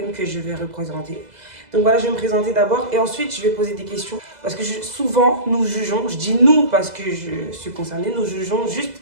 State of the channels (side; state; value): left; late; 2.0 ms